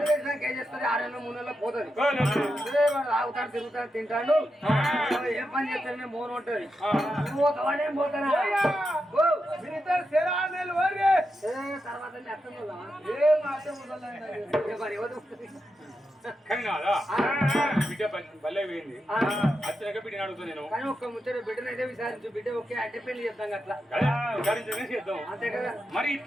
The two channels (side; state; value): both; normal; correlation 0.87